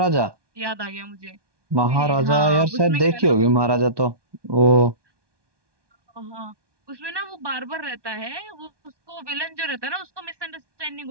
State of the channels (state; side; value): late; left; 1.2 ms